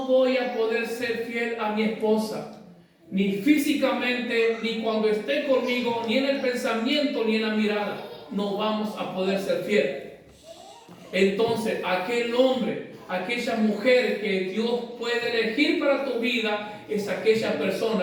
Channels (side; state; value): both; identical; correlation 1.00